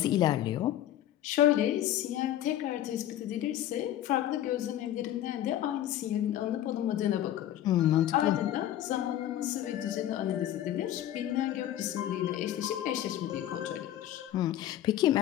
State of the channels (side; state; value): right; quieter; 12.3 dB